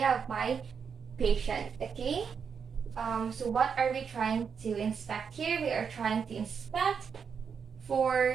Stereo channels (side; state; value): left; quieter; 6.5 dB